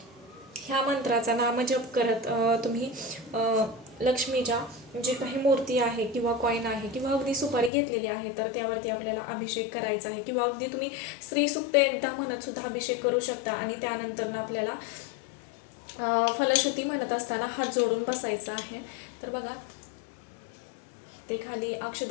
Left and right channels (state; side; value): drops out; right; at 7.7 s